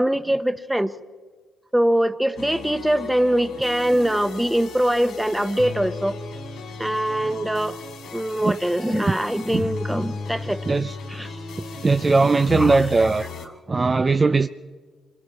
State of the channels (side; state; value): both; normal; correlation 0.96